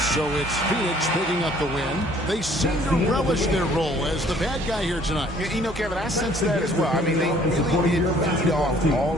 So it's Phoenix picking up the win. They seem to relish their role as the bad guy here tonight. You know, Kevin, I sense that as well. I mean, they really did feed off all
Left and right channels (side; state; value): both; normal; correlation 0.58